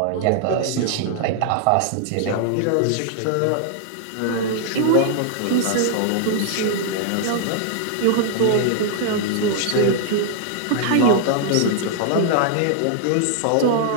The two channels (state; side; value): different; both; correlation -0.01